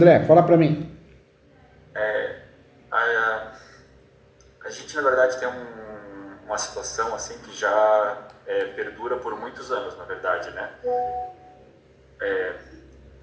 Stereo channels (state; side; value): identical; both; correlation 1.00